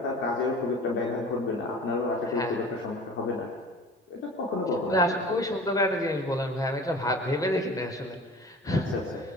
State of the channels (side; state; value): both; normal; correlation 0.41